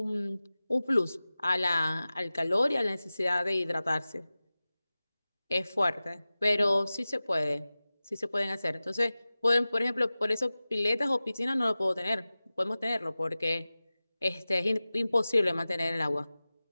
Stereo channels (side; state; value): both; inverted; correlation -0.97